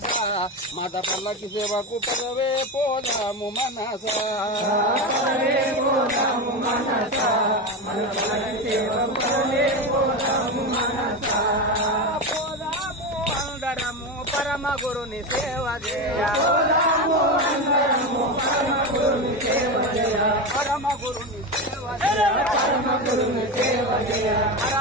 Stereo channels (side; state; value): both; normal; correlation 0.17